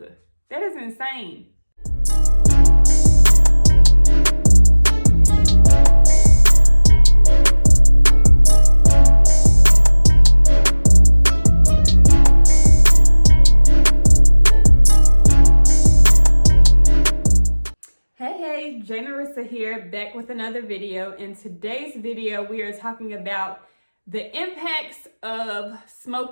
That is insane. Hey, Jay Narissa here, back with another video. In today's video, we are talking about the impacts of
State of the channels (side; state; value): both; inverted; correlation -1.00